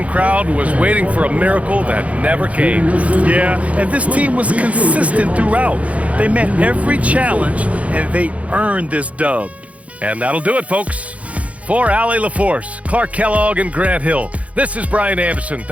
crowd was waiting for a miracle that never came. Yeah, and this team was consistent throughout. They met every challenge, and they earned this dub. And that'll do it, folks. For Allie LaForce, Clark Kellogg, and Grant Hill, this is Brian Anderson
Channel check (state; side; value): late; left; 0.066 ms